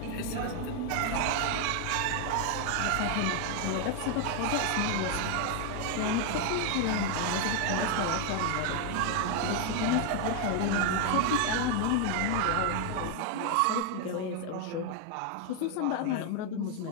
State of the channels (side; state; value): both; different; correlation 0.01